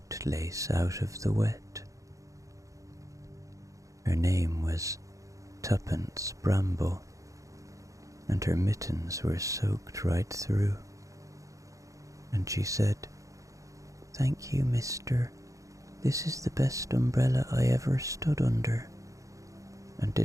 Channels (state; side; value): late; left; 0.16 ms